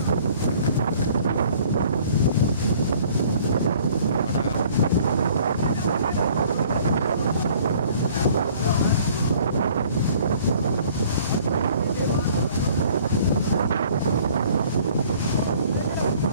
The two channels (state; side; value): inverted; both; correlation -0.55